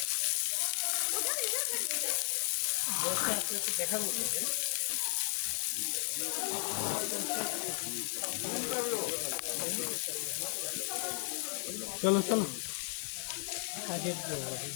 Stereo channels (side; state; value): right; silent; 55 dB below the other